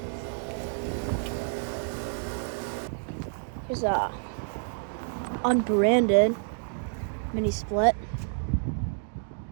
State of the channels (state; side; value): silent; left; digital silence